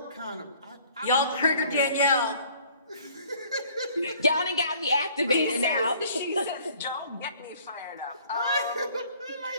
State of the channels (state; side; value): inverted; both; correlation -0.56